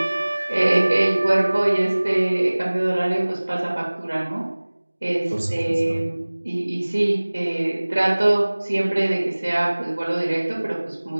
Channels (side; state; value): both; inverted; correlation -1.00